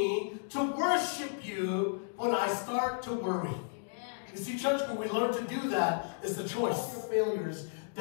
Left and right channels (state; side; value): silent; right; digital silence